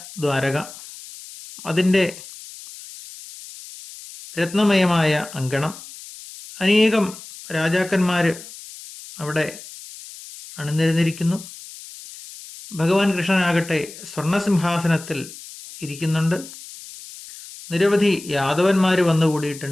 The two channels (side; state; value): left; noise; hiss, 16 dB below the sound